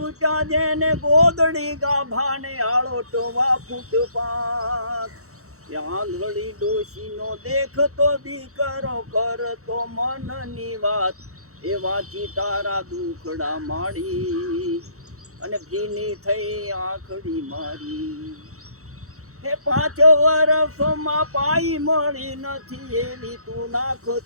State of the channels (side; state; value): left; late; 0.64 ms